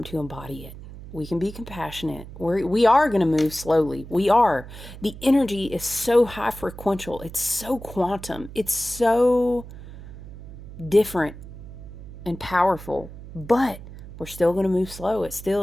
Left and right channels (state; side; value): noise; right; hum, 14 dB below the sound